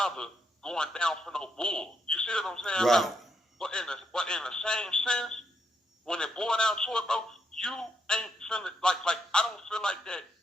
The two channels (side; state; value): both; normal; correlation 0.79